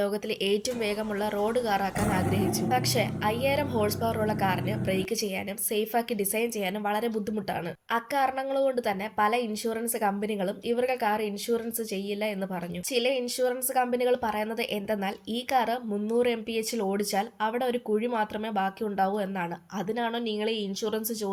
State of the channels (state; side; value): identical; both; correlation 1.00